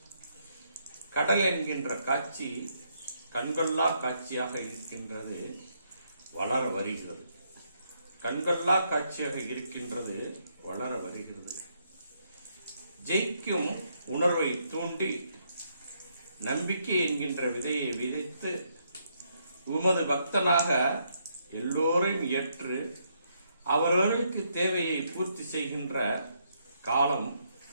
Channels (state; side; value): inverted; both; correlation -0.75